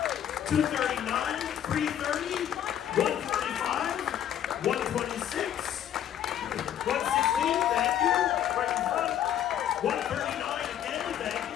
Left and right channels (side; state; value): right; quieter; 10.3 dB